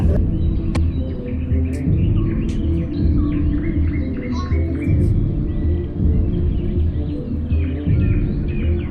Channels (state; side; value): identical; both; correlation 1.00